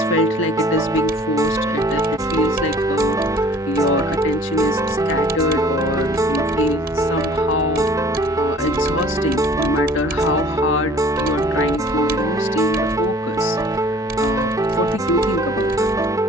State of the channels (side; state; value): both; normal; correlation 0.51